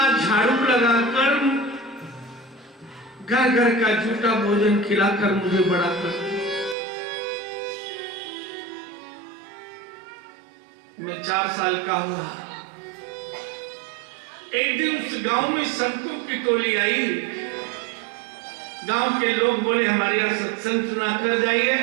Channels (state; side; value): drops out; left; at 6.8 s